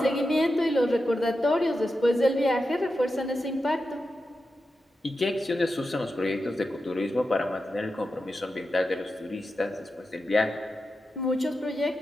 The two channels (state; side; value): normal; both; correlation 0.90